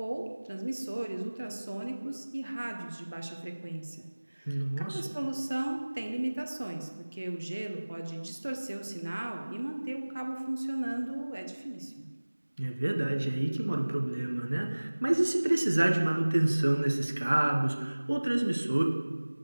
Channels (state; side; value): inverted; both; correlation -1.00